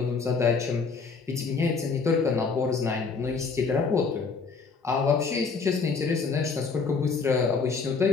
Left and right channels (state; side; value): quieter; right; 4.9 dB